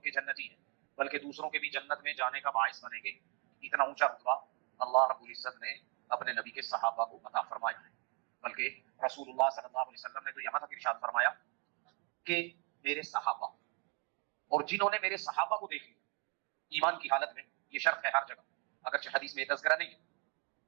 جنتی ہیں، بلکہ دوسروں کے بھی جنت میں جانے کا باعث بنیں گے۔ اتنا اونچا رتبہ اللہ رب العزت نے اپنے نبی کے صحابہ کو عطا فرمایا ہے، بلکہ رسول اللہ صلی اللہ علیہ وسلم نے تو یہاں تک ارشاد فرمایا کہ میرے صحابہ، اور جنہوں نے میرے صحابہ کو دیکھ لیا، ایمان کی حالت میں یہ شرط ہے ہر جگہ، اگرچہ حدیث میں تذکرہ نہیں ہے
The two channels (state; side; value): quieter; left; 34.2 dB